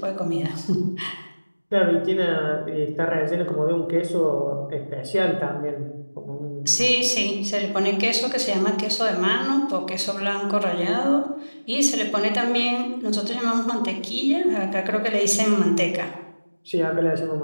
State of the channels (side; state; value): both; inverted; correlation -1.00